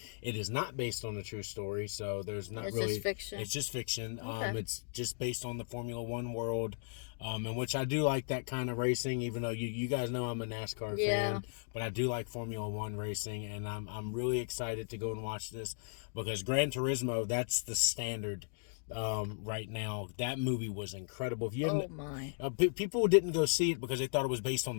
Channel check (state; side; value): silent; right; digital silence